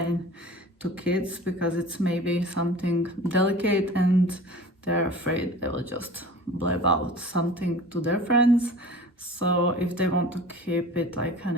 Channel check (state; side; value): normal; both; correlation 0.40